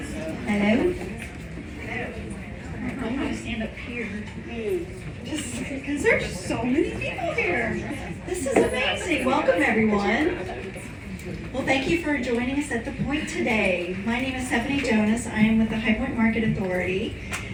Hello. I'm going to stand up here. Just because there's so many people here. This is amazing. Welcome, everyone. Well, thank you for joining us at The Point today. My name is Stephanie Jonas. I am with the High Point Market Authority.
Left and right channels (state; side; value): identical; both; correlation 1.00